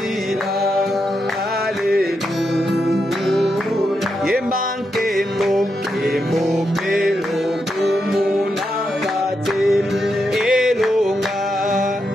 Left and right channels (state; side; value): normal; both; correlation 0.84